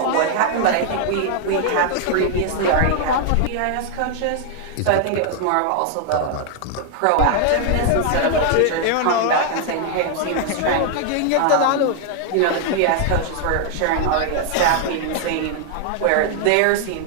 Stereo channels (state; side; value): different; both; correlation 0.00